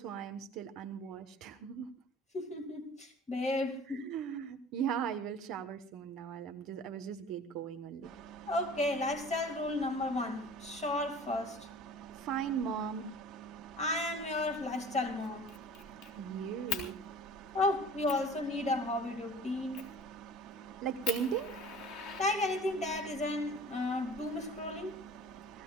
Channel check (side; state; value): both; normal; correlation 0.44